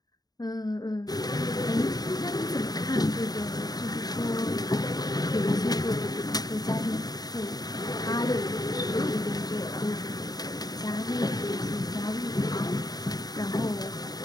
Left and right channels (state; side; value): late; right; 0.19 ms